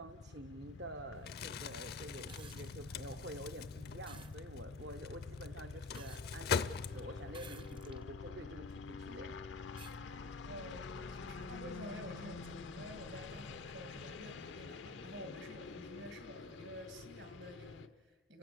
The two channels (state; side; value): quieter; right; 3.6 dB